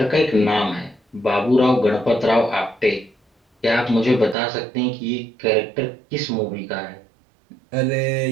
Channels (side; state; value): left; drops out; at 4.4 s